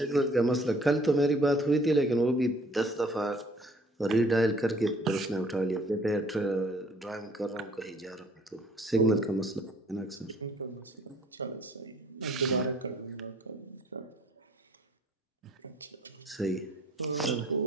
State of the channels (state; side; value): normal; both; correlation 0.57